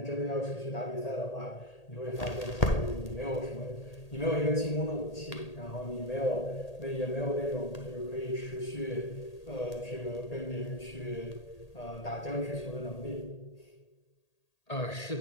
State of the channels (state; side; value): late; right; 1.8 ms